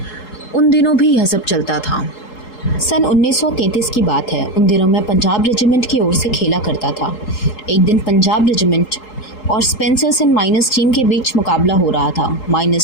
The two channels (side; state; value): right; late; 3.8 ms